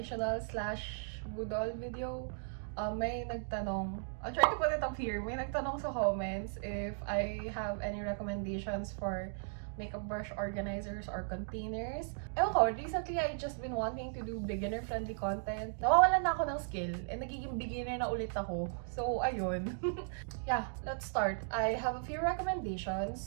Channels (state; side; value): silent; left; digital silence